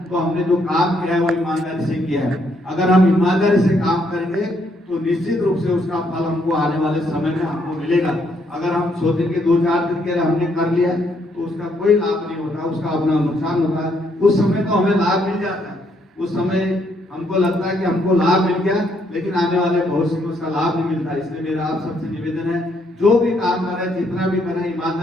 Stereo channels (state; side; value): normal; both; correlation 0.72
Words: तो हमने जो काम किया है वो ईमानदारी से किया है। अगर हम ईमानदारी से काम करेंगे तो निश्चित रूप से उसका फल हमको आने वाले समय में हमको मिलेगा। अगर हम सोचेंगे 2-4 दिन के लिए हमने कर लिया तो उसका कोई लाभ नहीं होता, उसका अपना नुकसान होता है। उस समय तो हमें लाभ मिल जाता है, उस समय हमको लगता है कि हमको लाभ मिल गया, लेकिन आने वाले भविष्य में उसका लाभ नहीं मिलता। इसलिए मेरा आप सबसे निवेदन है, जो भी काम करें, जितना भी करें,